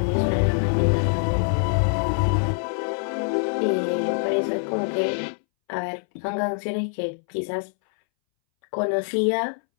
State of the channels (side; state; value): right; silent; 62 dB below the other